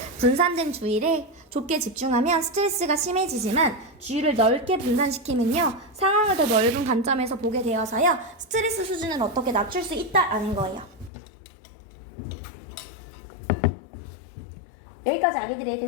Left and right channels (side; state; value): right; drops out; at 11.1 s